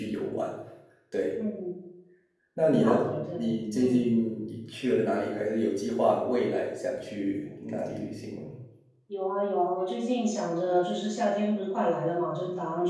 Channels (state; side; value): identical; both; correlation 1.00